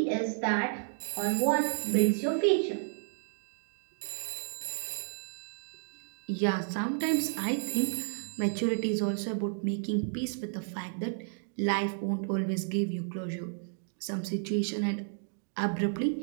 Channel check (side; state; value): left; silent; digital silence